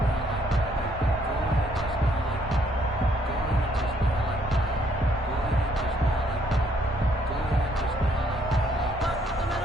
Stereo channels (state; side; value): normal; both; correlation 0.68